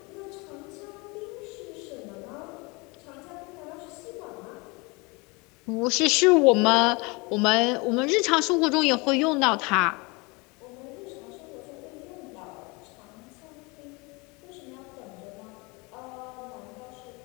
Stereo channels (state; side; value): quieter; right; 27.3 dB